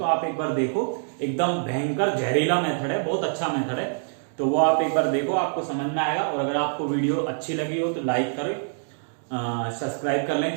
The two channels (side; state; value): left; silent; digital silence